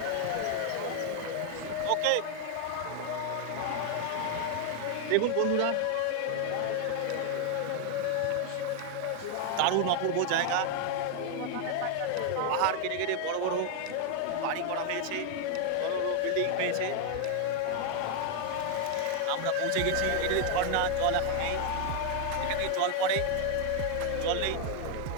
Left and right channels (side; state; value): both; different; correlation 0.00